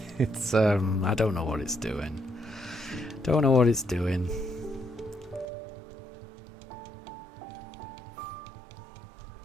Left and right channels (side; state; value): left; drops out; at 5.5 s